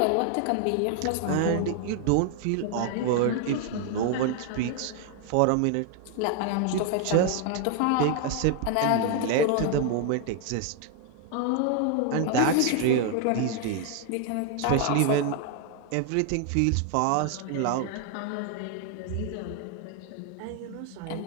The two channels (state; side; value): different; both; correlation 0.00